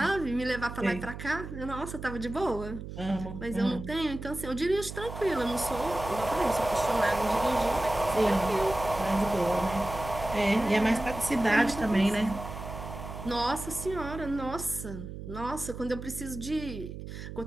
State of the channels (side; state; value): right; noise; hum, 10 dB below the sound